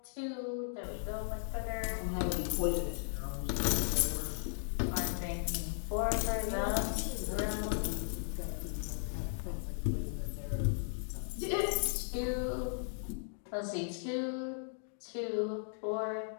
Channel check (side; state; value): right; silent; digital silence